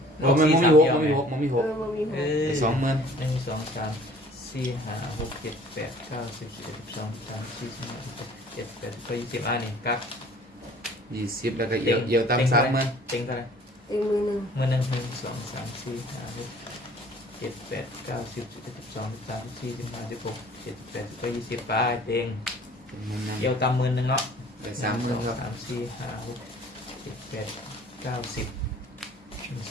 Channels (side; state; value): both; normal; correlation 0.51